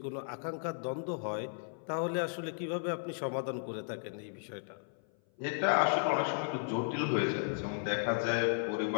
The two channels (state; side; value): silent; right; 55 dB below the other